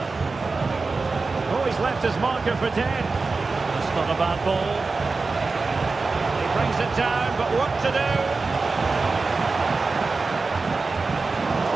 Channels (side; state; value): left; quieter; 4.0 dB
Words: Oh, he's left his marker for dead. That's not a bad ball. He brings it down, but what to do?